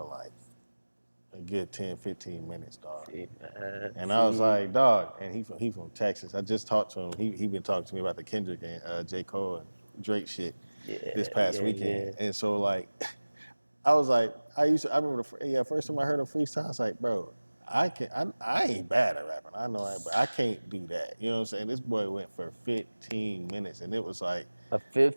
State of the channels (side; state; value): both; inverted; correlation -1.00